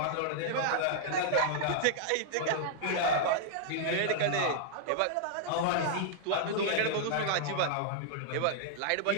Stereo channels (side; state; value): both; different; correlation -0.01